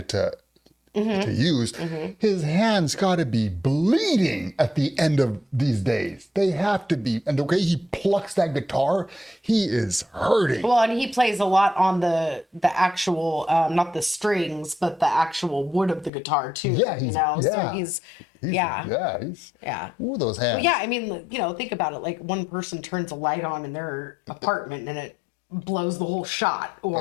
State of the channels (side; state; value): right; drops out; at 16.1 s